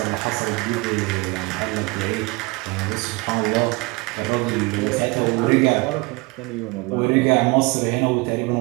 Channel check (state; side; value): quieter; left; 25.4 dB